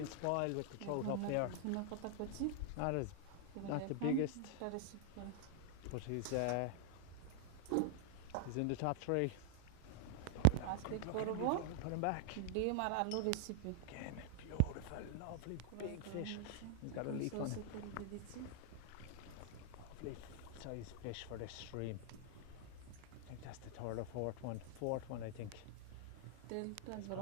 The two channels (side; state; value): both; different; correlation 0.00